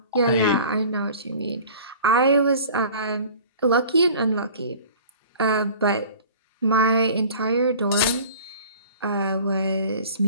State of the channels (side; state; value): both; inverted; correlation -0.45